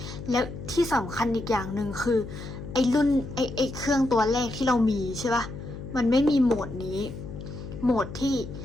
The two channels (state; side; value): noise; left; hum, 10 dB below the sound